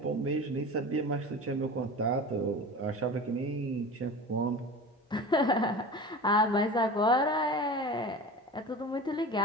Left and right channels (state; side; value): normal; both; correlation 0.34